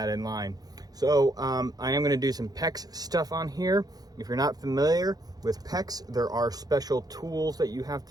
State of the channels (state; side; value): late; left; 0.19 ms